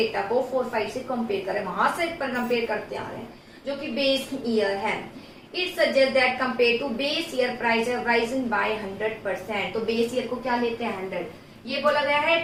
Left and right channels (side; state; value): both; identical; correlation 1.00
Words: को 4-5 से कंपेयर करें, वहां से पर कंपेयर करते आ रहे हैं जो कि बेस ईयर है। It suggest that compare to base year price have risen by 100%। तो बेस ईयर को क्या लेते हैं 100, ये बोला गया है